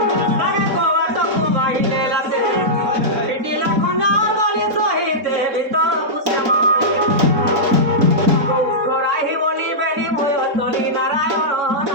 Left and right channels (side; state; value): left; late; 3.9 ms